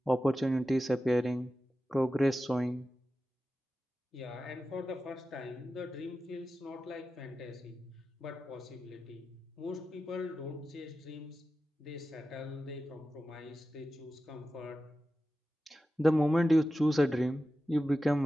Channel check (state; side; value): normal; both; correlation 0.93